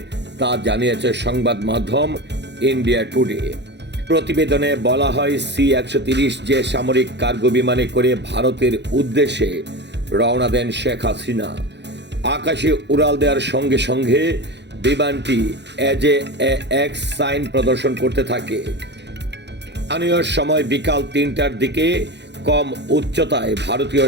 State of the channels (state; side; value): late; left; 0.50 ms